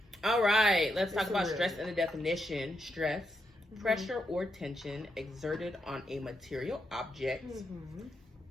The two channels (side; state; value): both; normal; correlation 0.82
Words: All right. Let's talk about stress and the definition. Stress, pressure or tension exerted on a material object.